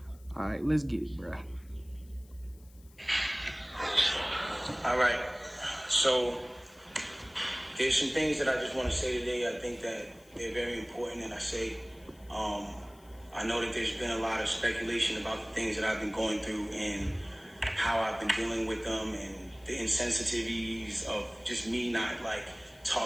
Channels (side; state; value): left; noise; hiss, 28 dB below the sound